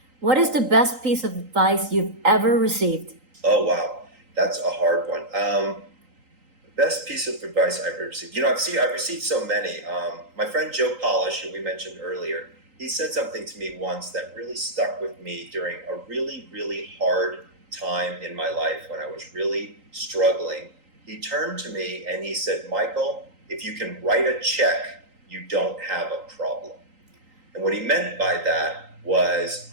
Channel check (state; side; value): late; left; 3.8 ms